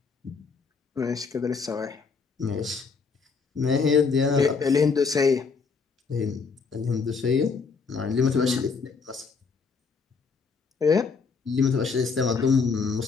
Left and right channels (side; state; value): right; quieter; 5.1 dB